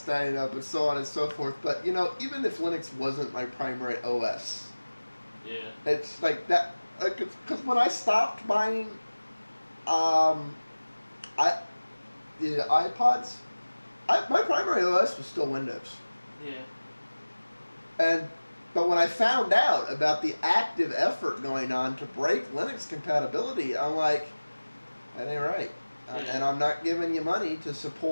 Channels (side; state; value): both; inverted; correlation -1.00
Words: up and so on and so forth, but you know, even if Linux wasn't my primary OS, yeah, it's like that. Because when I stopped buying, the iPods, my primary OS was still Windows. Yeah. But when I found out about the active effort going on to break Linux compatibility, I'm like, that ain't right. And I'm not giving you money to